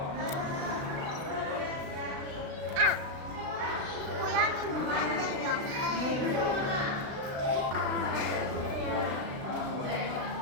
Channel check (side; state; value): left; late; 36 ms